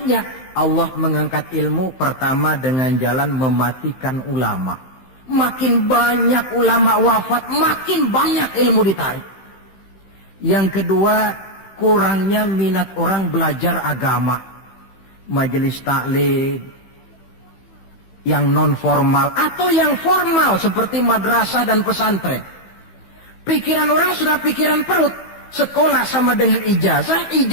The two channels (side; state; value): right; late; 15 ms